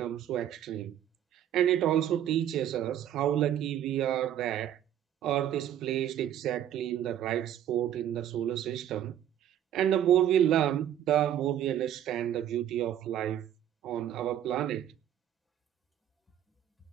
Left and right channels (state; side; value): quieter; left; 10.9 dB